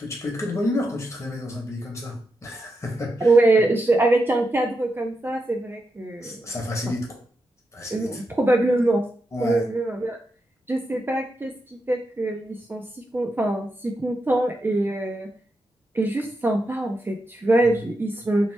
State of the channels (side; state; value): both; normal; correlation 0.86